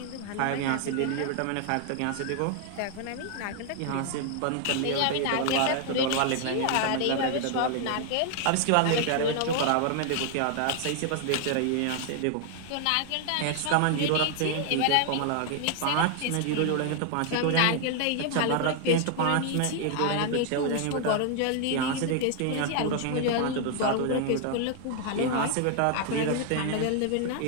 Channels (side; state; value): both; different; correlation 0.00